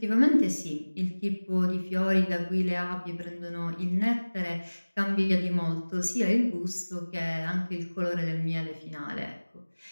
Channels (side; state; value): both; inverted; correlation -1.00